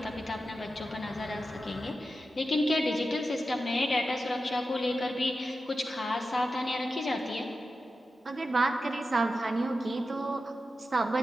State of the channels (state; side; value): normal; both; correlation 0.91